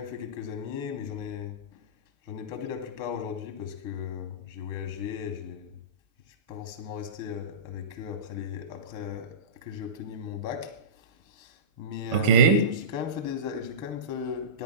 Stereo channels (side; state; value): left; late; 6.8 ms